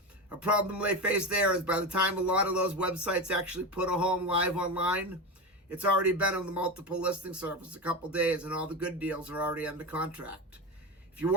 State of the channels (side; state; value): both; normal; correlation 0.20